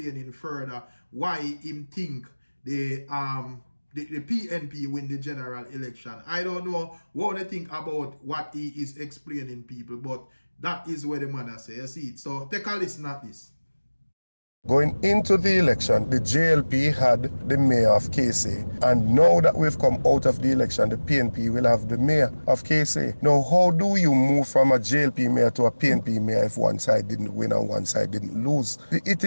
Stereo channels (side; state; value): both; inverted; correlation -1.00